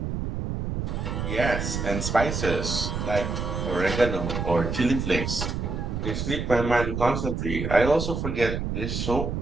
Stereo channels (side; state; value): right; noise; rumble, 3 dB below the sound